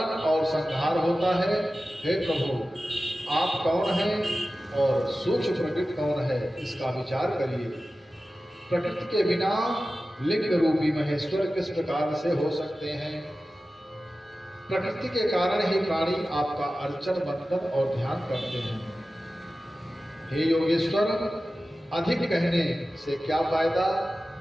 और संहार होता है। हे प्रभु, आप कौन हैं और सूक्ष्म प्रकृति कौन है, इसका विचार करिए। प्रकृति के बिना लिंग रूपी महेश्वर किस प्रकार से हो सकते हैं? प्रकृति के कारण ही प्राणी आपका अर्चन, वंदन और ध्यान करते हैं। हे योगेश्वर, अधिक कहने से क्या फायदा?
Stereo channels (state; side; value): normal; both; correlation 0.95